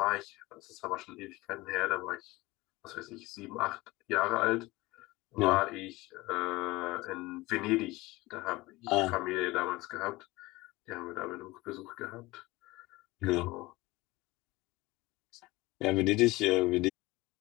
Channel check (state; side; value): quieter; right; 20.8 dB